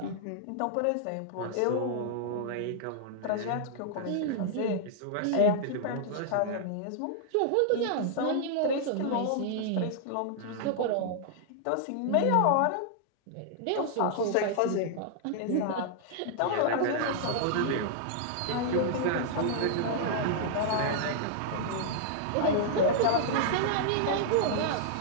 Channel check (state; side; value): different; both; correlation -0.01